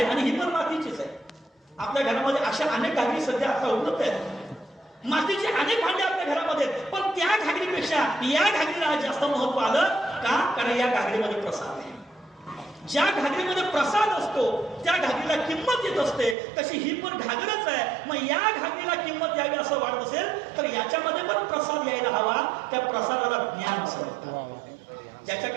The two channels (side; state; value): left; drops out; at 16.4 s